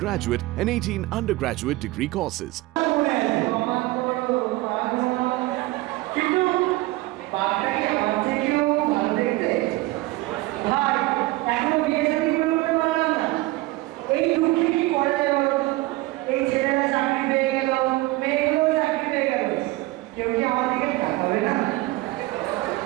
and 18 undergraduate degree courses. কিন্তু বাচ্চাকে আমার থেকেও ভালো দেখতে ভাই এখনো বিয়ে শাদী করে উঠতে পারলাম না এই দুঃখে কি করা যাবে এই ছেলেরা চাকরি পেয়ে গেল মেয়েগুলো চাকরি পেয়ে গেল কেউ কি আমার দিকে তাকাবে না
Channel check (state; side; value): quieter; left; 19.6 dB